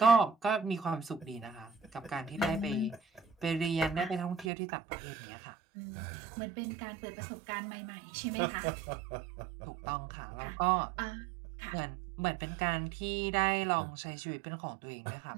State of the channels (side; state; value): left; drops out; at 4.5 s